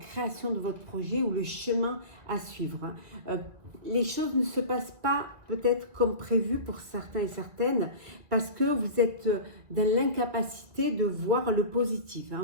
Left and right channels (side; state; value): left; late; 2.2 ms